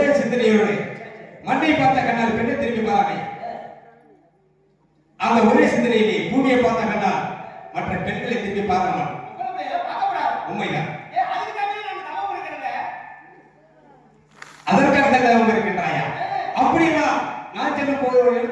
சிந்தனையோடு மண்ணை பார்த்த கண்ணால் பெண்ணை திரும்பி பாராமை அந்த ஒரே சிந்தனையிலே பூமியை பார்த்த கண்ணால் மற்ற பெண்களை திரும்பி பாராமல் உண்மைதான் அதற்காக தான் அவங்க இருக்கின்றாயா அப்படின்னா நான் செல்லும் போது ஒரு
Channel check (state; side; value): identical; both; correlation 1.00